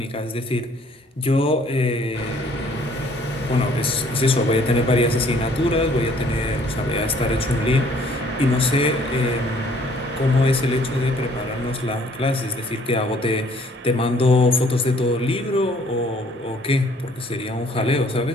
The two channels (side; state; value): both; normal; correlation 0.59